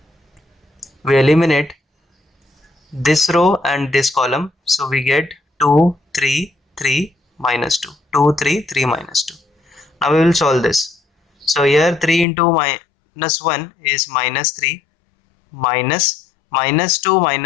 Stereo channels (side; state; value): right; drops out; at 12.2 s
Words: we eliminate this row and this column, so we get 2, 3, 3, minus 2. 2, 3, 3, minus 2. Now we will solve this. So here 3 into minus 1 is minus 3, minus 2